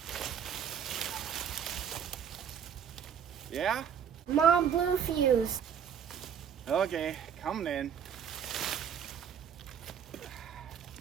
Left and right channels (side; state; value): left; quieter; 8.2 dB